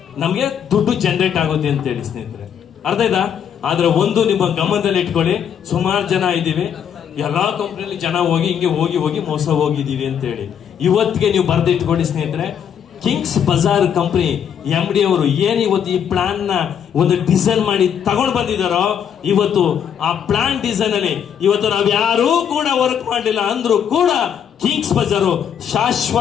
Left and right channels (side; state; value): right; quieter; 8.4 dB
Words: ನಮಗೆ ದುಡ್ಡು ಜನರೇಟ್ ಆಗುತ್ತೆ ಅಂತೇಳಿ ಸ್ನೇಹಿತರೆ, ಅರ್ಥ ಆಯ್ತಾ? ಆದ್ರೆ ಒಂದು ನಿಮ್ಮ ಗಮನದಲ್ಲಿ ಇಟ್ಕೊಳ್ಳಿ, ಸುಮಾರು ಜನ ಇದ್ದೀವಿ, ಎಲ್ಲಾ ಕಂಪ್ನಿಯಲ್ಲಿ ಜನ ಹೋಗಿ ಹಿಂಗೆ ಹೋಗಿ ಮೋಸ ಹೋಗಿದ್ದೀವಿ ಅಂತೇಳಿ. ಇವತ್ತಿಗೆ ನೀವು ಬರೆದಿಟ್ಕೊಳ್ಳಿ ಸ್ನೇಹಿತರೆ, ಕಿಂಗ್ಸ್ ಬಜಾರ್ ಕಂಪನಿ MD ಅವರು ಏನ್ ಇವತ್ತು ಈ ಪ್ಲಾನ್ ನ ಒಂದು ಡಿಸೈನ್ ಮಾಡಿ ತಗೊಂಡು ಬಂದಿದ್ದಾರೋ, ಇವತ್ತು ಆ ಪ್ಲಾನ್ ಡಿಸೈನ್ ಅಲ್ಲಿ ಇವತ್ತು ನಾವ್ ಯಾರೂ ಕೂಡ ವರ್ಕ್ ಮಾಡಲಿಲ್ಲ ಅಂದ್ರೂ ಕೂಡ ಕಿಂಗ್ಸ್ ಬಜಾರು